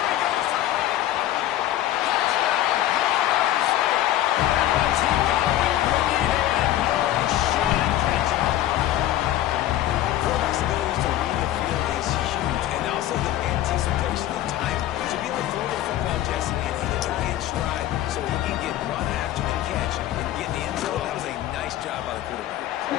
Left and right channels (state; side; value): quieter; right; 13.4 dB